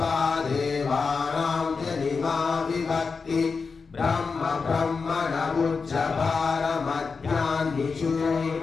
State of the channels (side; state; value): right; quieter; 4.9 dB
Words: देवानां जनिमा विभक्ति ब्रह्म ब्रह्मण